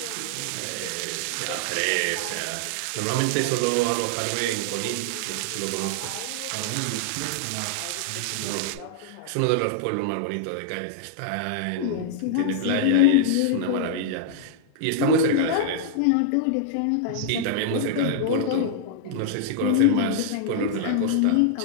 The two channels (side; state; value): both; different; correlation -0.01